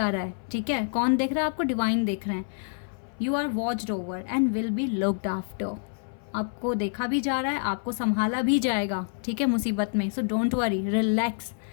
रहा है, ठीक है, कौन देख रहा है आपको, डिवाइन देख रहे हैं, you are watched over and will be looked after, आपको देखा भी जा रहा है, आपको संभाला भी जाएगा, ठीक है, मुसीबत में, so don't worry, relax,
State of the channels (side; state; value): right; silent; 57 dB below the other